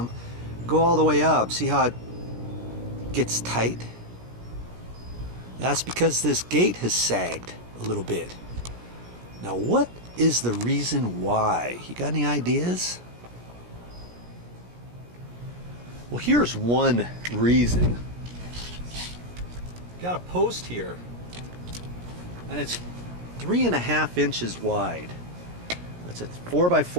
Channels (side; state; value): left; late; 17 ms